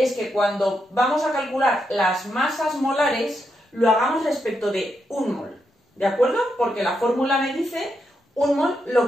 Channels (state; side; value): normal; both; correlation 0.83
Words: que cuando vamos a calcular las masas molares, lo hagamos respecto de un mol, ¿de acuerdo? Porque la fórmula me dice un mol lo